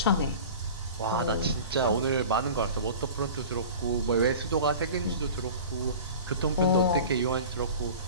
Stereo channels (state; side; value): inverted; both; correlation -0.38